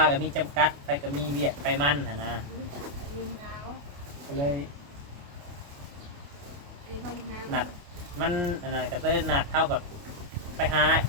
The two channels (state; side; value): late; left; 28 ms